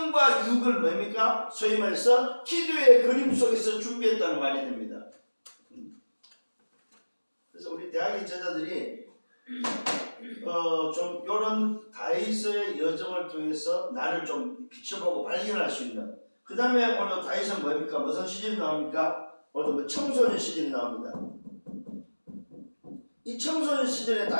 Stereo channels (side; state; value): both; inverted; correlation -1.00